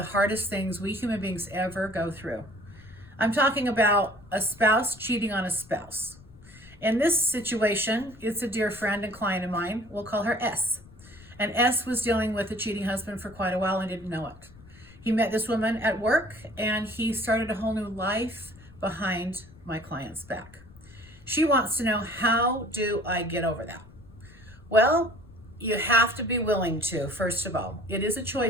hardest things we human beings ever go through. I'm talking about a spouse cheating on a spouse. In this situation, it's a dear friend and client of mine. We'll call her S. And S was dealing with a cheating husband for quite a while and didn't know it. He met this woman at work and he started a whole new life behind my client's back. She wants to know, how do I get over that? Well, you have to be willing to, first of all. It is a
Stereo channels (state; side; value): noise; left; rumble, 22 dB below the sound